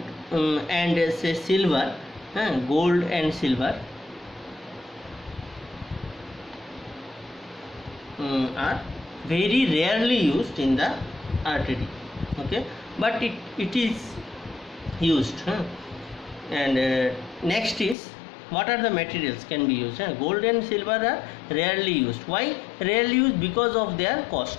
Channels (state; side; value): drops out; right; at 17.9 s